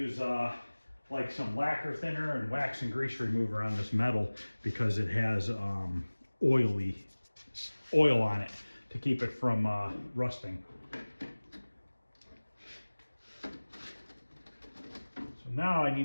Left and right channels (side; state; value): both; inverted; correlation -1.00